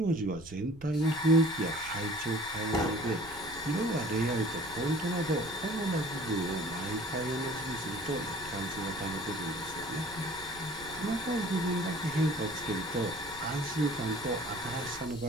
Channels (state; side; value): noise; right; rumble, 19 dB below the sound